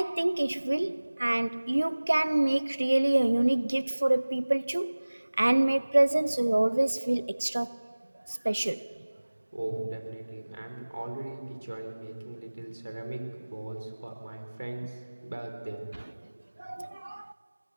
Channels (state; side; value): inverted; both; correlation -1.00